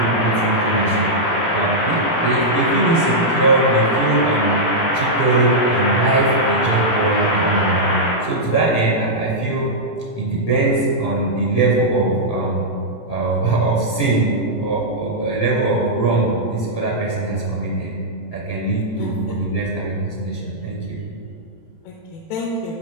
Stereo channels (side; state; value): right; late; 18 ms